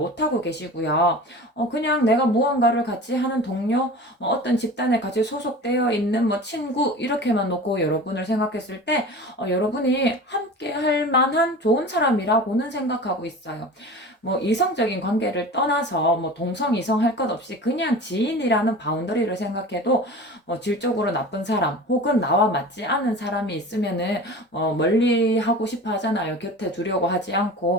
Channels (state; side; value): normal; both; correlation 0.36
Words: 하고 계시고요. 그냥 내가 무언가를 같이 하는 동료, 어떤 집단에 같이 소속되어 있는 뭐 친구, 이렇게만 놓고 여러분을 생각했을 때, 여러분이 함께 할 만한 좋은 사람이라고는 생각하고 있어요. 뭐 이성적인 관계를 떠나서 뭐 동성 이성 할 것 없이 그냥 지인이라는 바운더리를 생각해도 질적으로 나쁜 사람 혹은 나와 맞지 않은 사람이 있으면은 멀리 하고 싶어 하잖아요. 곁에 두려고 하지